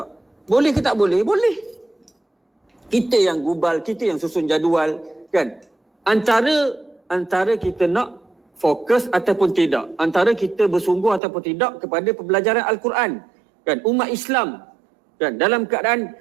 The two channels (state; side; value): drops out; left; at 11.2 s